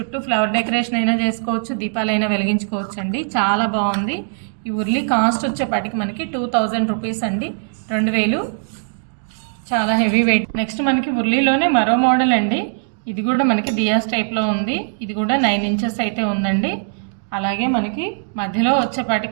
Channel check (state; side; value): silent; left; digital silence